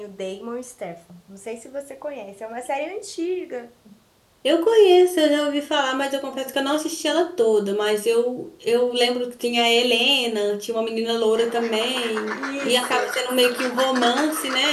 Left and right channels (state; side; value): identical; both; correlation 1.00